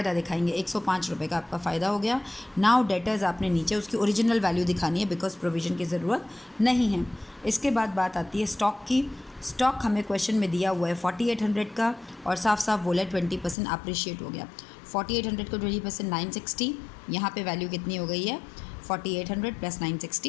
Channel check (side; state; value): right; drops out; at 13.6 s